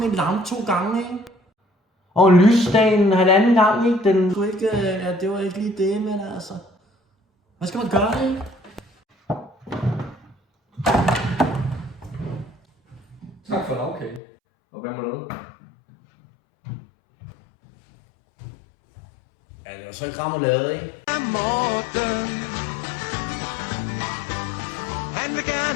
en lampe 2 gange, ikke? Og lysdagen 1,5 gang, ikke? Den skulle ikke, ja, det var ikke lige det, men altså. Hvad skal man gøre, ikke? Tak for lavkage. Og hvad med noget? Ja, det var så ikke remoulade, ikke? Morten, han vil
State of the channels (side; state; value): right; drops out; at 14.2 s